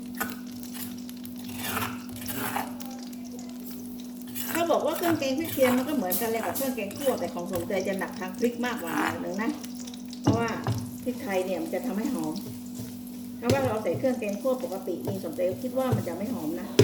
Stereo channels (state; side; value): identical; both; correlation 1.00